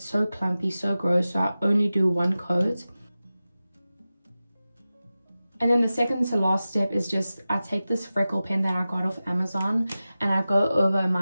so clumpy, so gross. So I only do one coat. And then the second to last step is just, I take this freckle pen that I got off Amazon, and I go over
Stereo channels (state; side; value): inverted; both; correlation -0.95